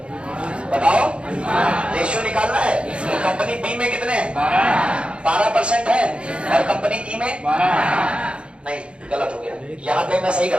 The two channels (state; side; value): late; left; 0.057 ms